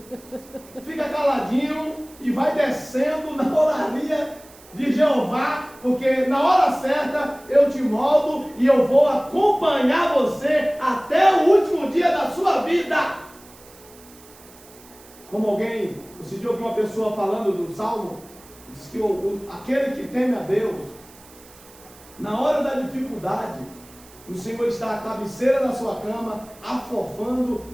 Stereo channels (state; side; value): noise; right; hiss, 23 dB below the sound